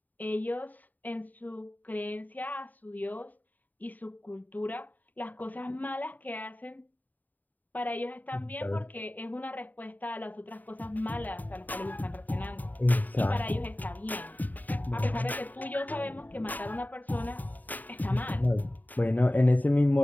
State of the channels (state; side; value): late; right; 0.083 ms